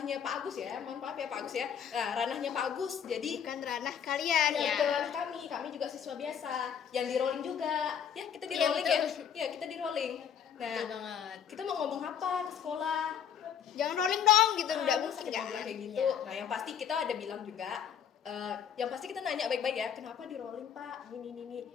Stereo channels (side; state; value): right; quieter; 8.4 dB